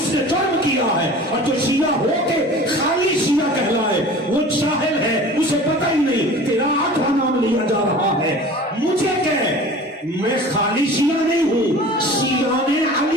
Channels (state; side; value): normal; both; correlation 0.41